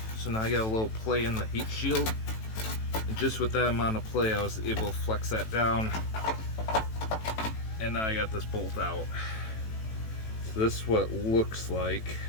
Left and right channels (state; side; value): late; right; 18 ms